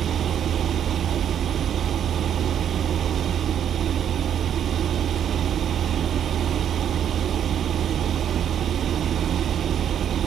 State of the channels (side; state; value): left; quieter; 9.4 dB